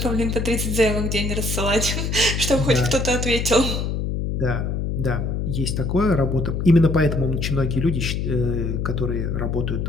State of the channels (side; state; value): left; noise; hum, 1 dB below the sound